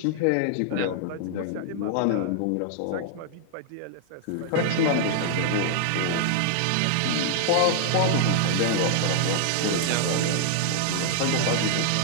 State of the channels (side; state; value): both; different; correlation -0.01